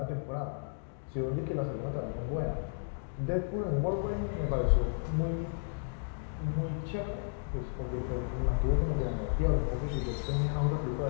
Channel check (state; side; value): silent; right; digital silence